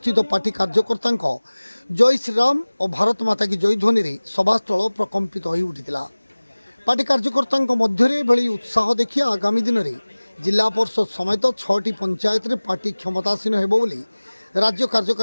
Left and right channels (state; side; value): inverted; both; correlation -1.00